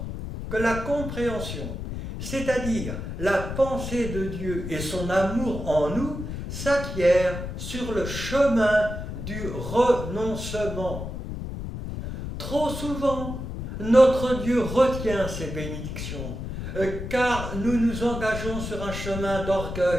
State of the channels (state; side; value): noise; left; rumble, 6 dB below the sound